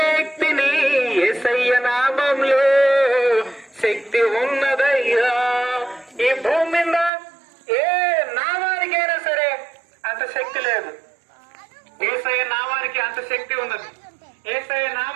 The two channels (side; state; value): left; drops out; at 7.1 s